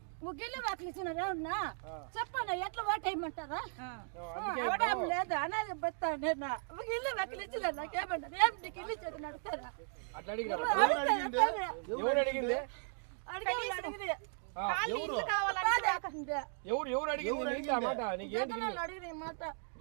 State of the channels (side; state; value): left; silent; 53 dB below the other